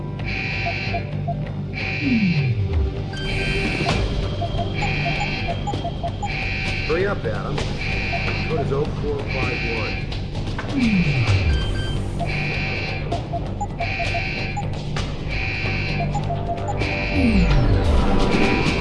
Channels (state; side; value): identical; both; correlation 1.00